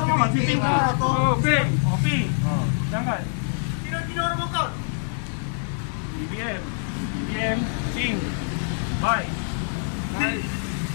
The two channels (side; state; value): right; silent; digital silence